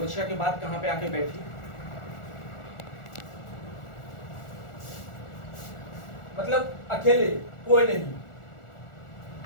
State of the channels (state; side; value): late; right; 1.4 ms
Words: के बाद कहाँ पे आके बैठी, मतलब अकेले, कोई नहीं,